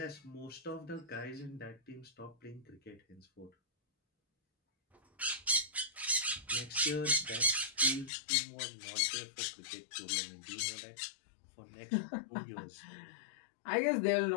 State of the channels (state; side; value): drops out; right; at 8.1 s